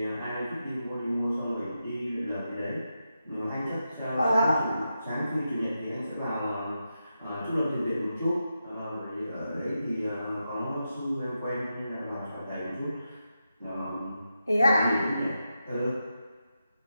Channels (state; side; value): inverted; both; correlation -0.88